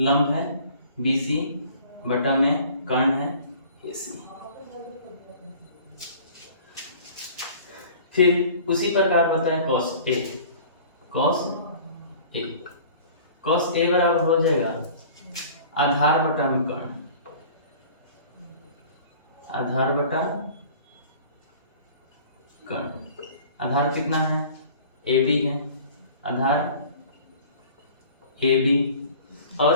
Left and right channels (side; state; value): both; inverted; correlation -0.46